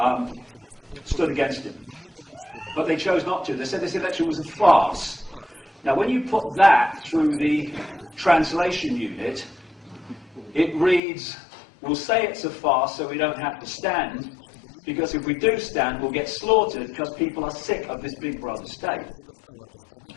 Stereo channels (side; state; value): right; drops out; at 11.0 s